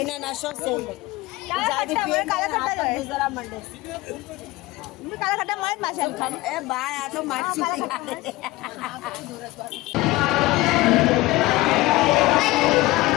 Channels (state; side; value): quieter; right; 19.4 dB